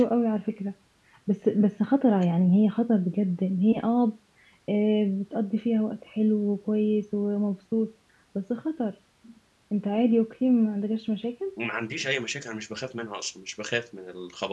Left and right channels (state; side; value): identical; both; correlation 1.00